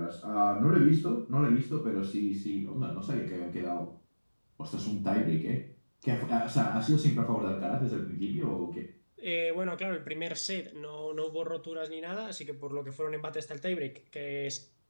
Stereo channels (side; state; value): both; inverted; correlation -1.00